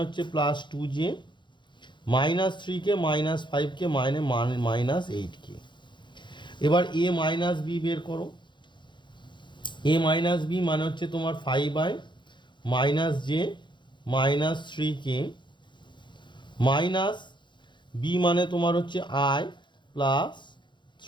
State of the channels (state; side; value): late; right; 0.23 ms